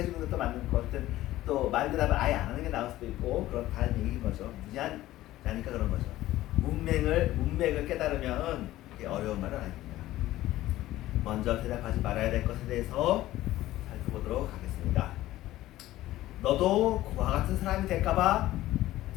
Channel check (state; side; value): quieter; right; 15.5 dB